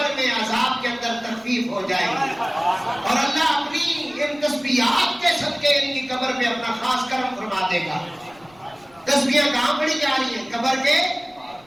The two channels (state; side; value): noise; left; rumble, 29 dB below the sound